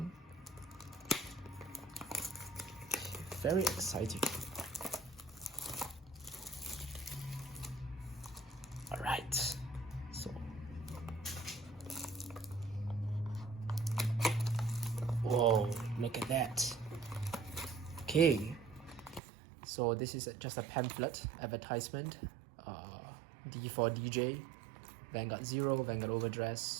Very exciting. Alright, so whoa, look at that. Okay, so this is just a pamphlet advertisement. D4 DJ, Vanguard 0, Vanguard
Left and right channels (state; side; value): drops out; left; at 19.2 s